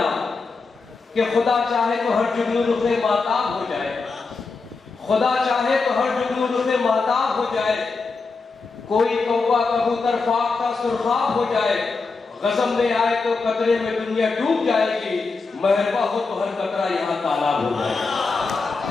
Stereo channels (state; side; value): quieter; right; 4.2 dB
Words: کہ خدا چاہے تو ہر جگنو رخ ماتاب ہو جائے، خدا چاہے تو ہر جگنو رخ ماتاب ہو جائے، کوئی کوّا کبوتر خاک کا سرخاب ہو جائے، غضب میں آئے تو قطرے میں دنیا ڈوب جائے گی، مہرباں ہو تو ہر قطرہ یہاں تالاب ہو جائے گا۔